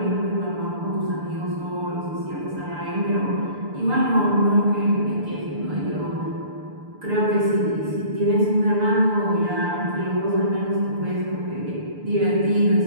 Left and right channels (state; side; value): late; left; 6.8 ms